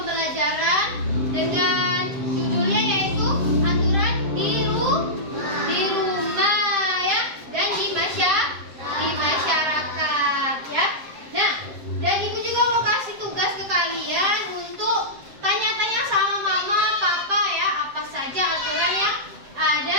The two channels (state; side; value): late; left; 7.6 ms